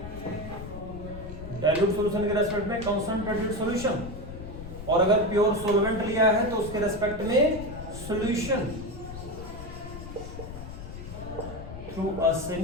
dilute solution के रेस्पेक्ट में कंसंट्रेटेड सॉल्यूशन, और अगर प्योर सॉल्वेंट लिया है तो उसके रेस्पेक्ट में solution through a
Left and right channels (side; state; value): left; noise; rumble, 11 dB below the sound